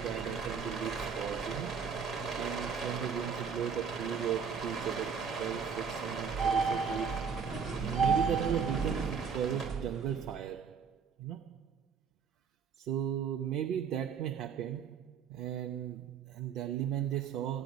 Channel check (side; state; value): left; quieter; 6.5 dB